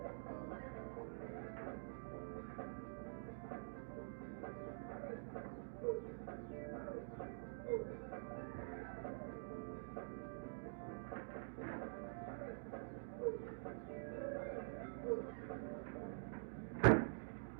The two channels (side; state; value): left; silent; digital silence